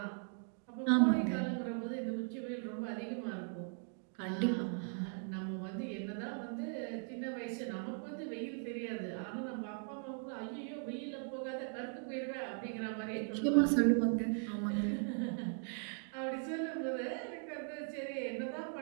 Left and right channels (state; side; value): silent; left; 52 dB below the other